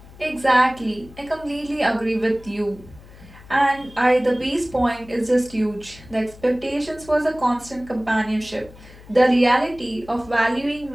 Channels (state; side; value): noise; left; hum, 21 dB below the sound